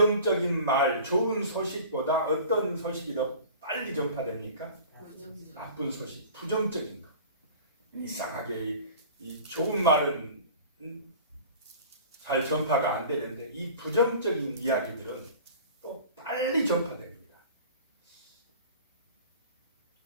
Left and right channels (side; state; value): both; inverted; correlation -0.42